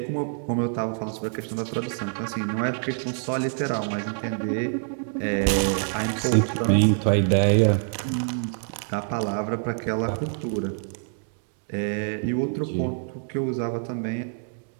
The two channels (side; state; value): left; silent; digital silence